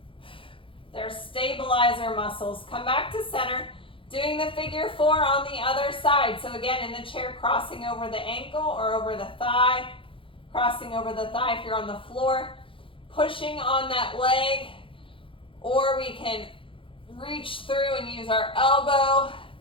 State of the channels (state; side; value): late; right; 0.25 ms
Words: They're stabilizer muscles. Come back to center, doing the figure 4 on the other side. So again, in the chair, crossing over the ankle or over the thigh, crossing over the thigh if you're on the floor, pushing on that leg, or we can reach through and use our elbow